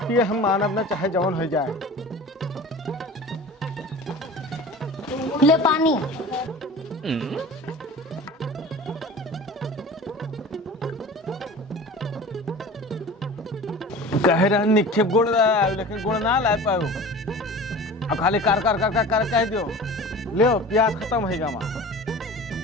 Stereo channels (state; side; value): normal; both; correlation 0.38